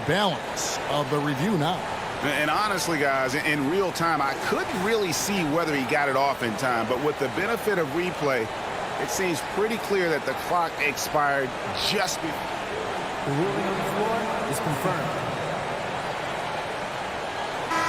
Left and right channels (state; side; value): identical; both; correlation 1.00